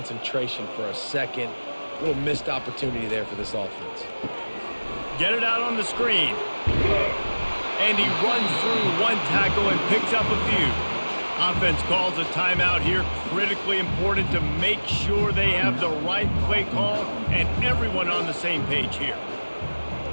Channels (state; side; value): inverted; both; correlation -1.00